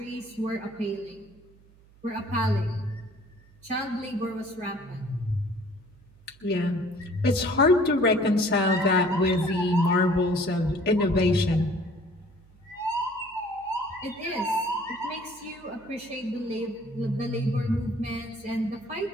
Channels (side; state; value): right; noise; hum, 27 dB below the sound